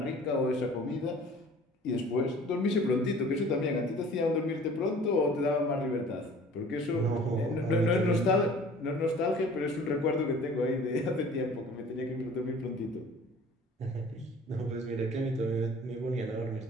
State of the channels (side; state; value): both; normal; correlation 0.48